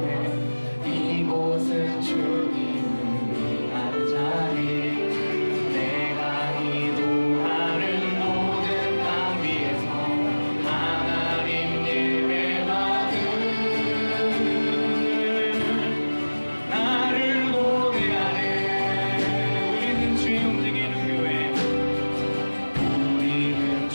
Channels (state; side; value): inverted; both; correlation -1.00